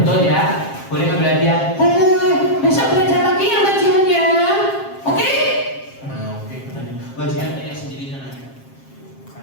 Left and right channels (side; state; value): right; late; 7.5 ms